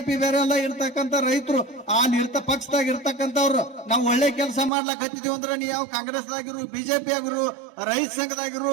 ಬೇರೆ ಅಲ್ಲ, ಇರ್ತಕ್ಕಂಥ ರೈತರು ಅಲ್ಲಿ ಪಕ್ಷದಾಗ ಇರ್ತಕ್ಕಂಥವ್ರು ನಾವು ಒಳ್ಳೆ ಕೆಲಸ ಮಾಡ್ಲಾಕ ಹತ್ತಿದೀವಿ ಅಂದ್ರೆ ನೀವು ಯಾವ ಕಾಂಗ್ರೆಸ್ದಾಗಿರು ಬಿಜೆಪಿ ಆಗಿರು ರೈತ ಸಂಘದಾಗಿರು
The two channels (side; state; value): left; drops out; at 4.7 s